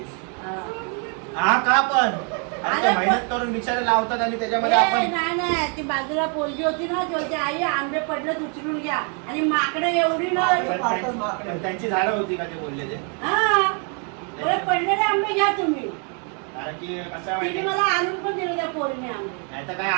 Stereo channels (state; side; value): quieter; left; 39.0 dB